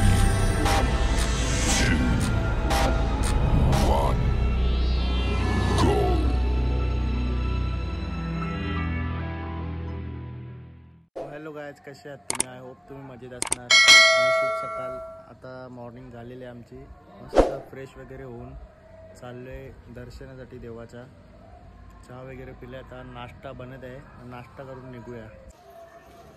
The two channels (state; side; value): identical; both; correlation 1.00